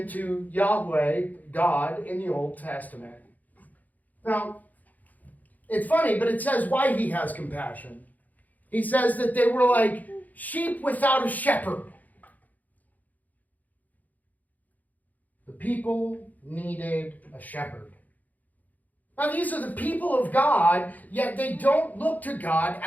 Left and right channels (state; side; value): late; right; 0.080 ms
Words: to Yahweh, God, in the Old Testament. Now, it's funny, but it says why he has compassion. He says that they were like sheep without a shepherd. The people needed a shepherd. Now, these are the people of God, yet they don't look to God